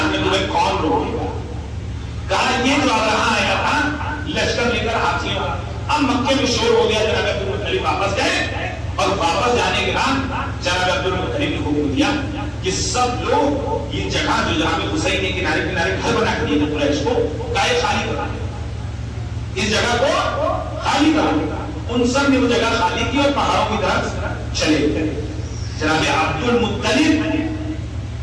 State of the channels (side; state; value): both; identical; correlation 1.00